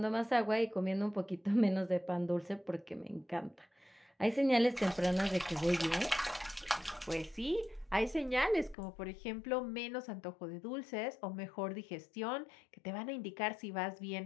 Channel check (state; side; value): drops out; right; at 8.8 s